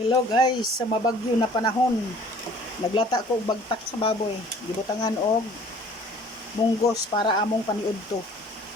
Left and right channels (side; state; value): both; normal; correlation 0.52